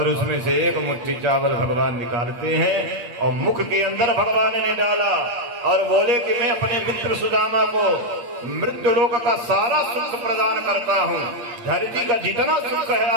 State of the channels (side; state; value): left; late; 8.6 ms